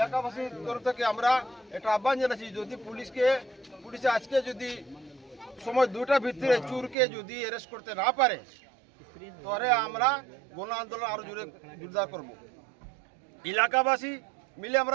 তরফ থেকে আমরা একটা আহ্বান জানাচ্ছি যদি পুলিশে আজকে যদি সময় 2টার ভিতরে চুরকে যদি অ্যারেস্ট করতে না পারে তাহলে আমরা গণ আন্দোলন আরো জোরদার করব এলাকাবাসী মিলে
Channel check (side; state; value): left; drops out; at 7.0 s